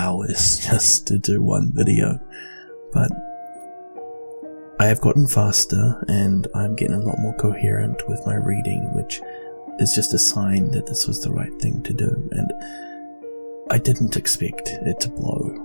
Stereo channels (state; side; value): inverted; both; correlation -1.00